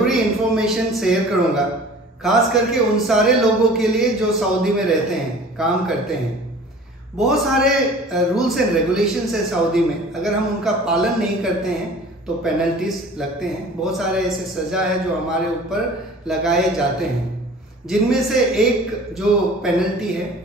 इंफॉर्मेशन शेयर करूंगा, खास करके उन सारे लोगों के लिए जो सऊदी में रहते हैं, काम करते हैं। बहुत सारे रूल्स एंड रेगुलेशंस है सऊदी में, अगर हम उनका पालन नहीं करते हैं तो पेनल्टीज लगते हैं। बहुत सारे ऐसे सज़ा है जो हमारे ऊपर लगाए जाते हैं, जिनमें से एक जो पेनल्टी है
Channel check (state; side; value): normal; both; correlation 0.45